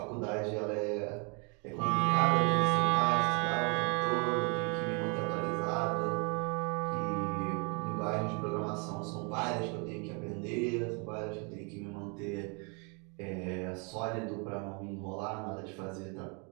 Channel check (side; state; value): left; quieter; 34.3 dB